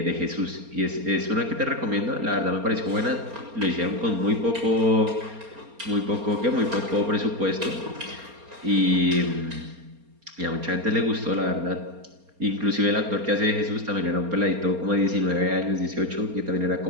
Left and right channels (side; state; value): left; late; 4.3 ms